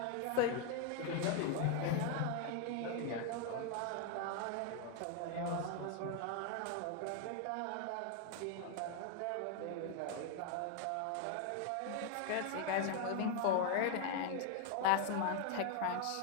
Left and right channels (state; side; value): different; both; correlation 0.00